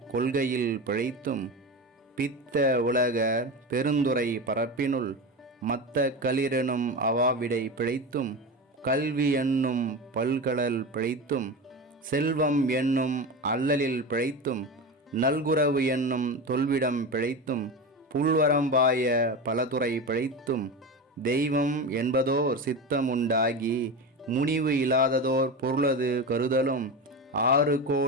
கொள்கையில் பிழைத்தும் பித்த உலகர் பெருந்துரை பரப்பினுள் மத்த களிரெனும் அவாவிடை பிழைத்தும் கல்வி என்னும் பல்கடல் பிழைத்தும் செல்வம் என்னும் அல்லலில் பிழைத்தும் நல்குரவு என்னும் தொல்விடம் பிழைத்தும் புல்வரம்பாய பலதுறை பிழைத்தும் தெய்வம் என்பதோர் சித்தமுண்டாகி முனிவு இல்லாததோர் பொருளது கருதலும் 6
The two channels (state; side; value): normal; both; correlation 0.23